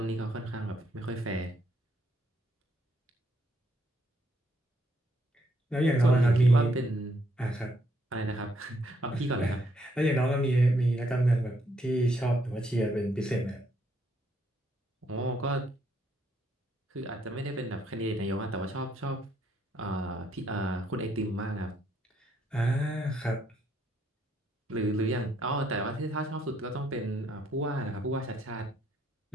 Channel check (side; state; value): both; normal; correlation 0.72